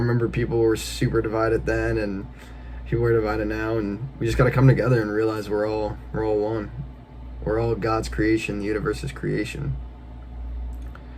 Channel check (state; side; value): identical; both; correlation 1.00